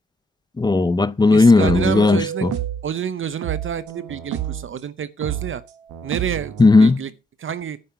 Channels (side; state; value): both; normal; correlation 0.78